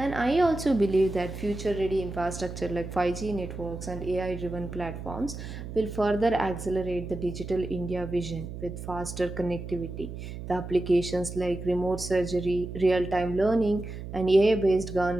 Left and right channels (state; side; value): noise; right; hum, 9 dB below the sound